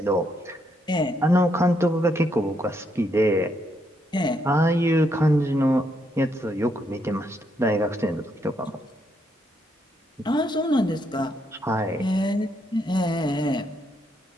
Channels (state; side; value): normal; both; correlation 0.76